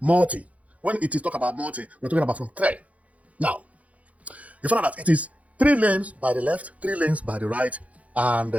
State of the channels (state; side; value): late; left; 0.067 ms